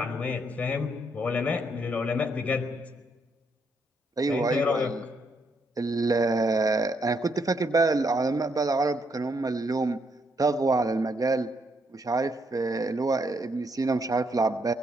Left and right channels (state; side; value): normal; both; correlation 0.75